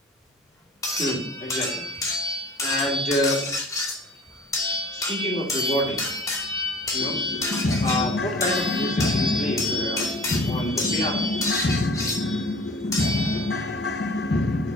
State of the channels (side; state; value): both; normal; correlation 0.46